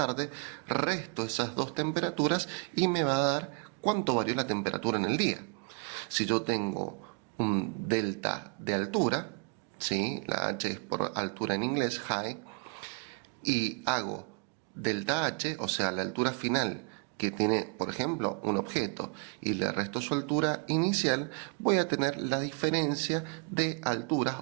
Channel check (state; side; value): quieter; left; 34.0 dB